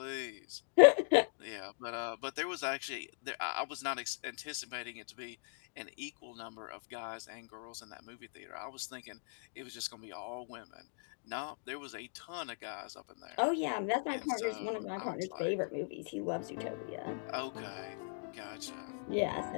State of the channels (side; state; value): right; silent; digital silence